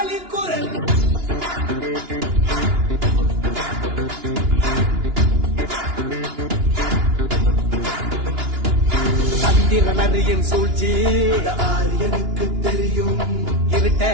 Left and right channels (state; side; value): late; left; 2.9 ms